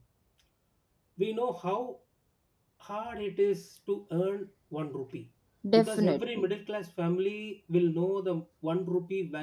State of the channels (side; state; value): both; identical; correlation 1.00